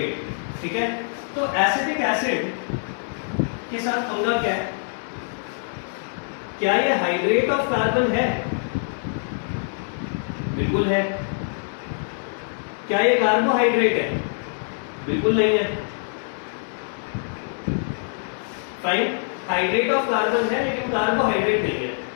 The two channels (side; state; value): right; silent; 62 dB below the other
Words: ठीक है? तो एसिटिक एसिड के साथ पंगा क्या है? क्या ये हाइड्रेट ऑफ कार्बन है? बिल्कुल है। क्या ये कार्बोहाइड्रेट है? बिल्कुल नहीं है। फाइन, हाइड्रेट ऑफ कार्बन है लेकिन कार्बोहाइड्रेट नहीं है।